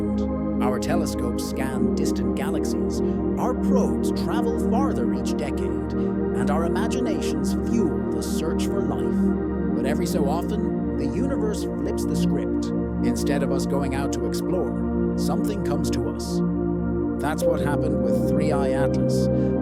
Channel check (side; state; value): both; identical; correlation 1.00